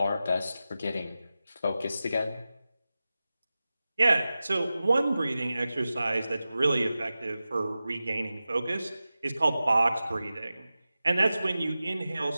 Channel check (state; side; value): inverted; both; correlation -0.95